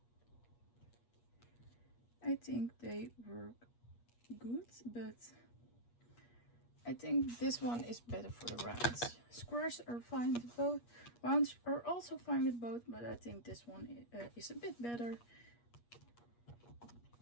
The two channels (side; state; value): right; late; 8.4 ms